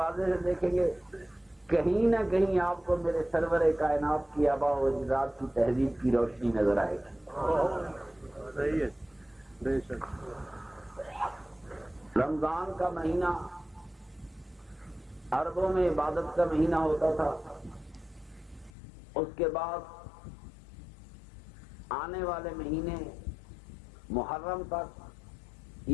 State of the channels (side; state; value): right; drops out; at 18.7 s